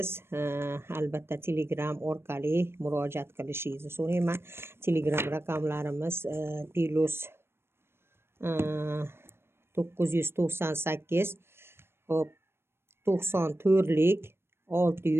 Albatta Telegram orqali murojaat qilishingizni so'rayman. Telegram raqamlarimiz +998 hop 94lik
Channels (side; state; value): left; late; 0.12 ms